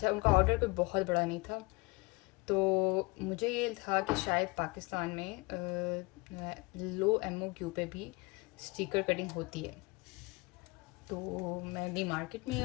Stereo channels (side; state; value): right; quieter; 25.4 dB